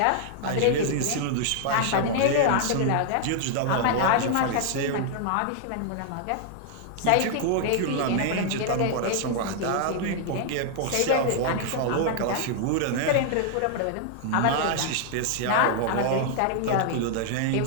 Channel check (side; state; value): both; different; correlation -0.01